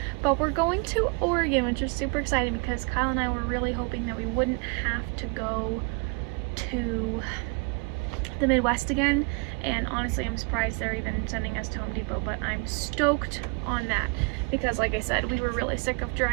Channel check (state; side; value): quieter; left; 31.4 dB